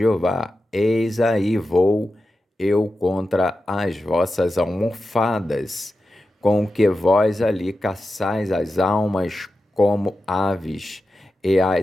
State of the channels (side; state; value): both; normal; correlation 0.91